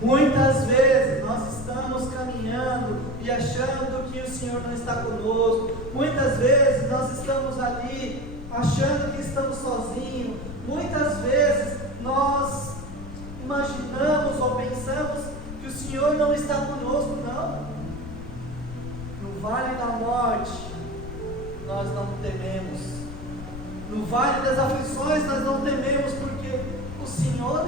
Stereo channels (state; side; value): noise; left; rumble, 10 dB below the sound